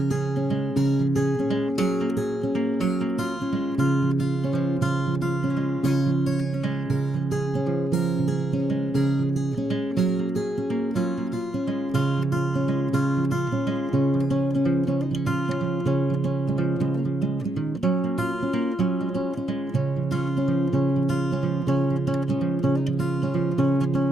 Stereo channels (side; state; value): both; normal; correlation 0.81